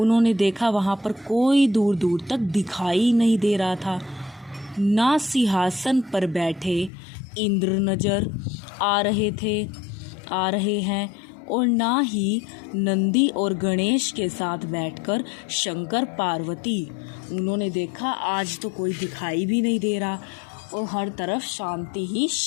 देखा वहाँ पर कोई दूर दूर तक दिखाई नहीं दे रहा था। ना सिंहासन पर बैठे इंद्र नज़र आ रहे हैं, और ना ही नंदी और गणेश के साथ बैठकर शंकर पार्वती। उन्होंने देखा आज तो कोई दिखाई भी नहीं दे रहा, और हर तरफ शांति ही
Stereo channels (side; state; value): right; drops out; at 6.9 s